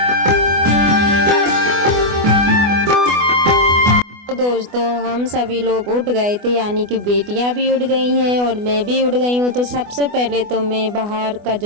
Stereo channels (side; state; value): left; late; 24 ms